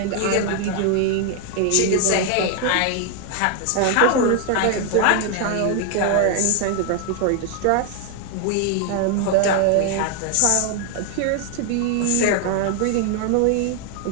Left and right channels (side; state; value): both; different; correlation 0.01